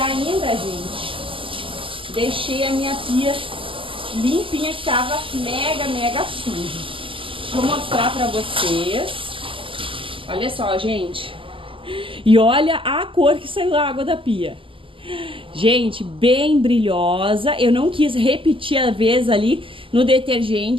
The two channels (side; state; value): left; late; 0.25 ms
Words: gente, deixei a minha pia limpinha, que tava mega suja. Deixa eu mostrar pra vocês. Olha só, gente. E olha a cor que saiu da água da pia. Gente, bem brilhosa. Eu não quis repetir a vez ali no